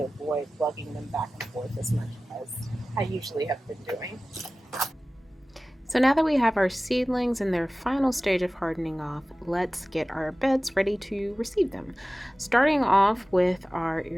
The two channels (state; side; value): normal; both; correlation 0.97